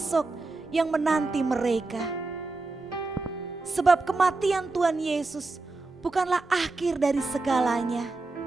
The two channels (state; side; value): quieter; left; 3.4 dB